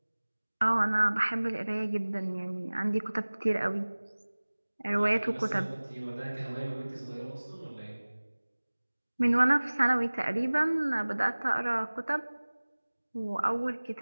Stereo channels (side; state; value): both; inverted; correlation -1.00